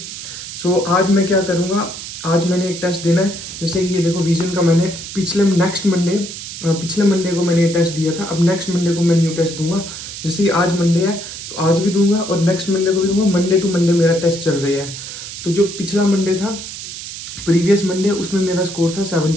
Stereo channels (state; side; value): noise; right; hiss, 10 dB below the sound